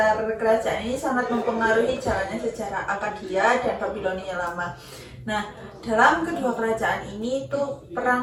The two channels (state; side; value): identical; both; correlation 1.00